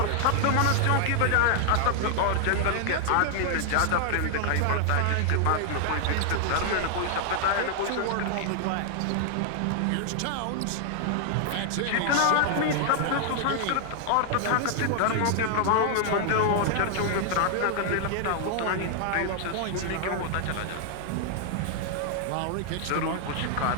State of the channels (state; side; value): different; both; correlation 0.00